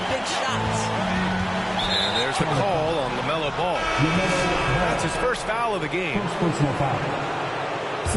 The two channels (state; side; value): identical; both; correlation 1.00